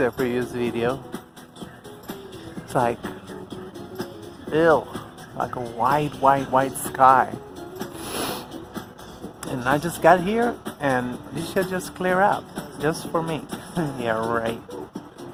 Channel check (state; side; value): identical; both; correlation 1.00